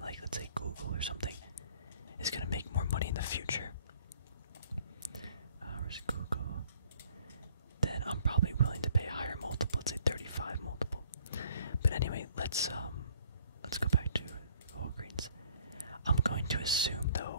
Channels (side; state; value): both; inverted; correlation -0.58